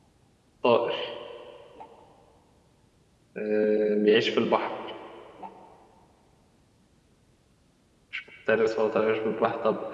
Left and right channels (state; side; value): identical; both; correlation 1.00